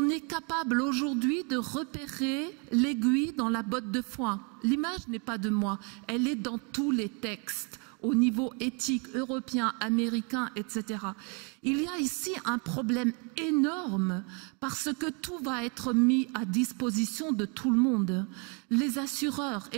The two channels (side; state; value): left; quieter; 35.0 dB